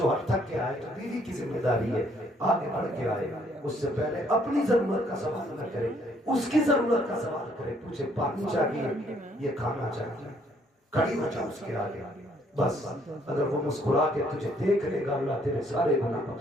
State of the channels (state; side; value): normal; both; correlation 0.66